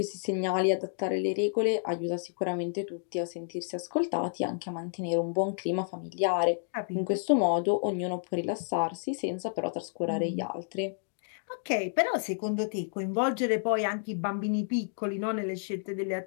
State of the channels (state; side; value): silent; right; digital silence